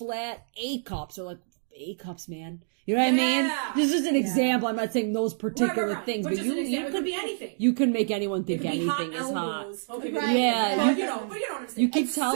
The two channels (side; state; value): left; silent; digital silence